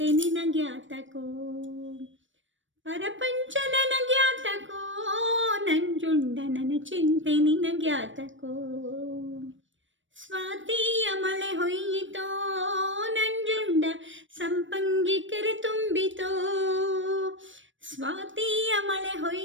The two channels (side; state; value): left; late; 0.56 ms